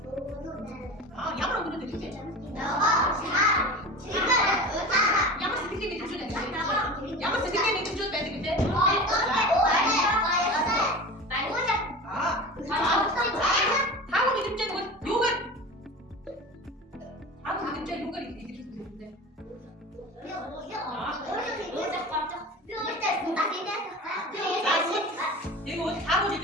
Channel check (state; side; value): normal; both; correlation 0.32